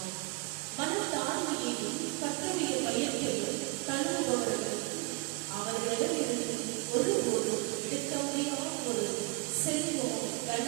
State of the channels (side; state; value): left; quieter; 28.7 dB